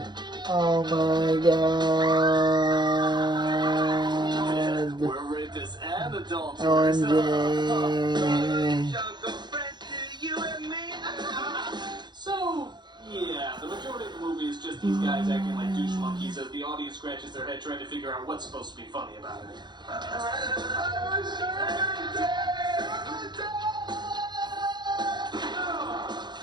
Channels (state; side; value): late; left; 0.21 ms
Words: Oh my god. We're rapists and adulterers. So, yeah, the majority of the movie is just these guys acting like douche monkeys as the audience scratches their head trying to figure out what's supposed to be funny about it.